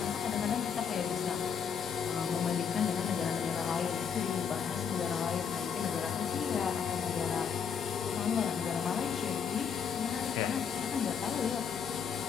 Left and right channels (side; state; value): right; quieter; 7.1 dB